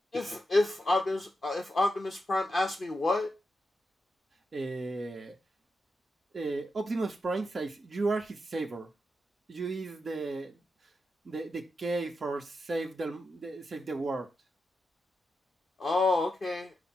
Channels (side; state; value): both; normal; correlation 0.87